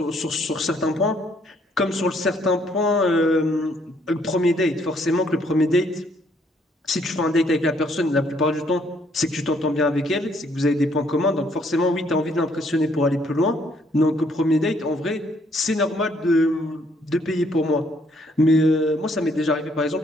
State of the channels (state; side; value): normal; both; correlation 0.67